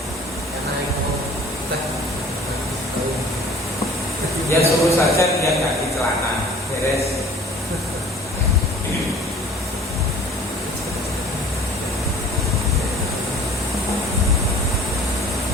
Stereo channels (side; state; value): both; normal; correlation 0.48